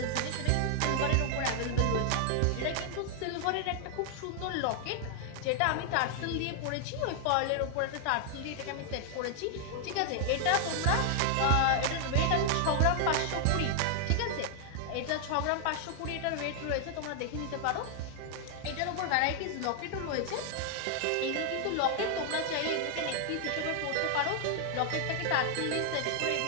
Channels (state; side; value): different; both; correlation 0.00